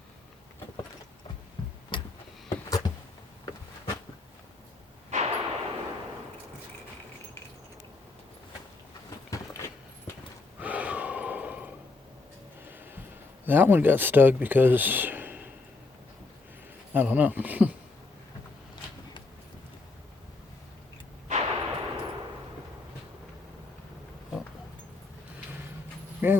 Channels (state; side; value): quieter; right; 3.6 dB